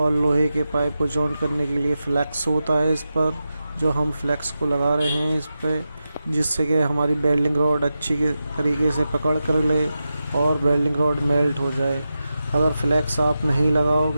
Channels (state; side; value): inverted; both; correlation -0.91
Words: लोहे के पाइप को जॉइंट करने के लिए फ्लैक्स होता है इस पर, जो हम फ्लैक्स को लगा रहे हैं इस पर, जिससे कि हमारी वेल्डिंग रॉड अच्छी के तरीके से पकड़ कर ले और वेल्डिंग रॉड मेल्ट हो जाए। अगर फ्लैक्स आप नहीं